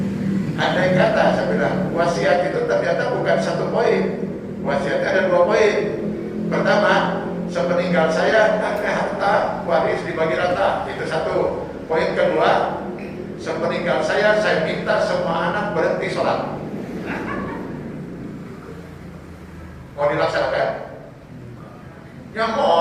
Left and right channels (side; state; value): both; identical; correlation 1.00